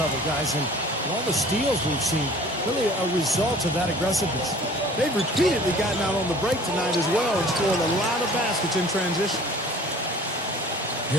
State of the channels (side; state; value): both; normal; correlation 0.48